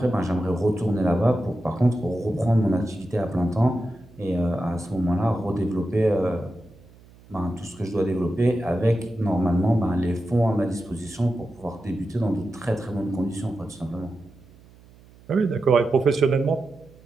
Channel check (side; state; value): right; noise; hum, 25 dB below the sound